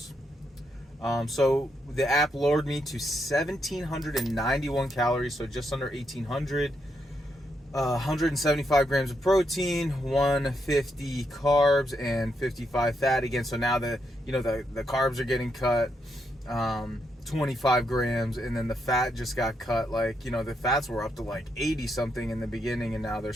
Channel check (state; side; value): normal; both; correlation 0.80